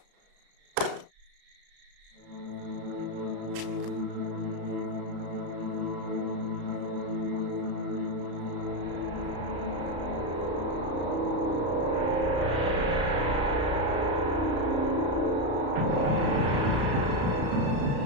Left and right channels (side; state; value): left; late; 34 ms